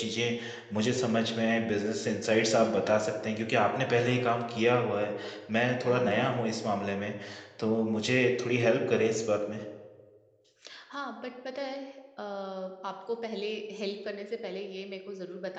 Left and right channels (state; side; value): identical; both; correlation 1.00